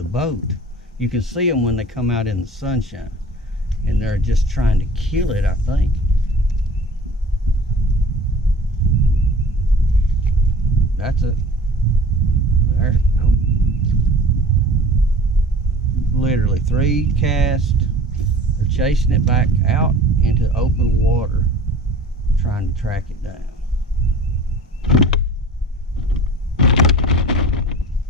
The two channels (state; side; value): normal; both; correlation 0.42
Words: boat. You can see them when they come out in the sunshine. And they're just trying to kill it, I think. That's it. There. Oh. Literally 3 casts. They're chasing it back out into open water, trying to track it down.